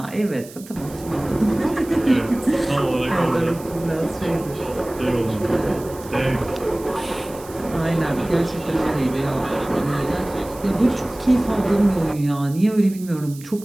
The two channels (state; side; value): noise; right; hiss, 19 dB below the sound